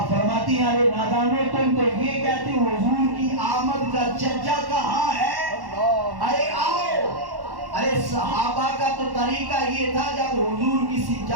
فرماتی ہیں ارے نادانوں تم تو یہ کہتے ہو حضور کی آمد کا چرچا کہاں ہے؟ ارے آؤ۔ ارے صحابہ کا تو طریقہ یہ تھا جب حضور کسی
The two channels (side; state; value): left; late; 1.1 ms